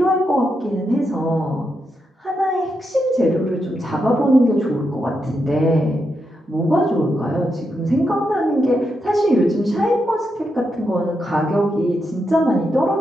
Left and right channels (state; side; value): normal; both; correlation 0.84